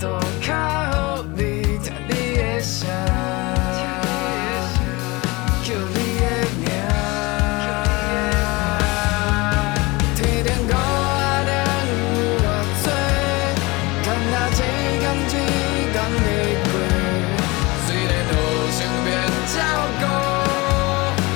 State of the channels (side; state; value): right; quieter; 23.9 dB